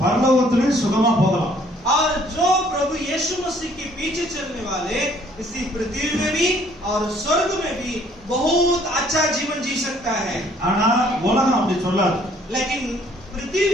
பரலோகத்திலேயே சுகமா போகலாம். और जो प्रभु यीशु मसीह के पीछे चलने वाले इसी पृथ्वी में भी और स्वर्ग में भी बहुत अच्छा जीवन जी सकता है। ஆனா உலகம் அப்படி சொல்லாது. लेकिन पृथ्वी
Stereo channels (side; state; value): both; normal; correlation 0.61